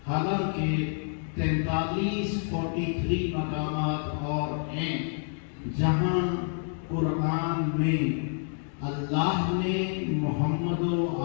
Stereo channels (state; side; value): silent; right; 59 dB below the other